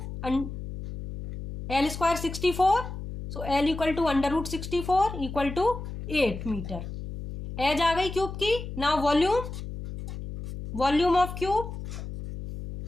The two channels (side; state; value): left; noise; hum, 8 dB below the sound